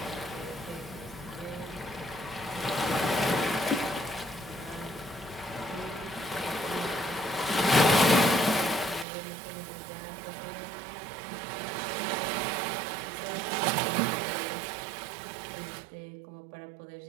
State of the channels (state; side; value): drops out; left; at 9.1 s